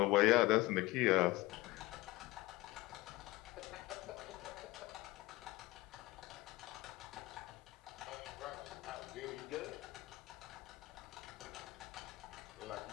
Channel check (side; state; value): right; quieter; 20.1 dB